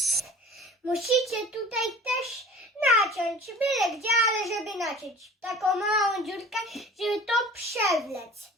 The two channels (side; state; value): both; normal; correlation 0.44